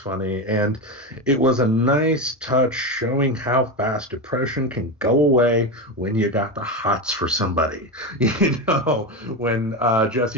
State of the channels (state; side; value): normal; both; correlation 0.16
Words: and it was a nice touch showing how fast depression can go away when you got the hots for somebody. When